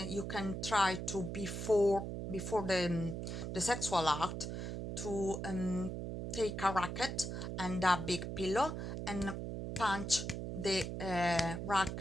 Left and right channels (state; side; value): noise; right; hum, 5 dB below the sound